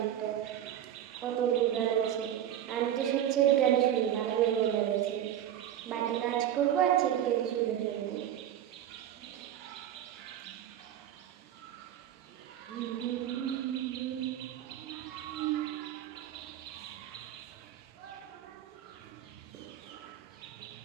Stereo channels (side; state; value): left; quieter; 10.9 dB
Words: কত গান আছে। আমি তো সবচেয়ে গান শুনি, ভালো লাগে লাগছে, বাড়ি কাজ করবো আর ছেলেকে শুনে থাকবো।